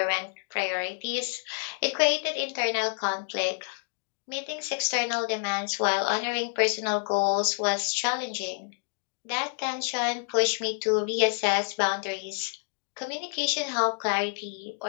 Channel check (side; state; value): right; silent; 59 dB below the other